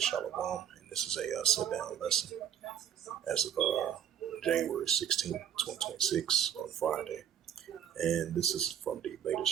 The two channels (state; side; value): quieter; left; 9.4 dB